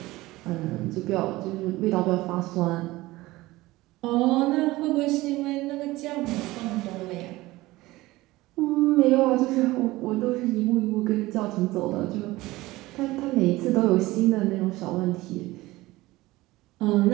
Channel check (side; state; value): left; quieter; 19.0 dB